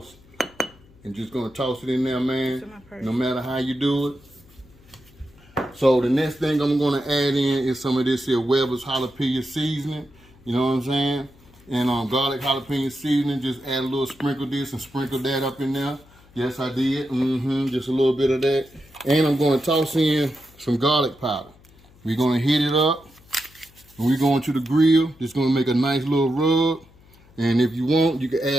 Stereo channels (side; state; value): left; noise; hum, 27 dB below the sound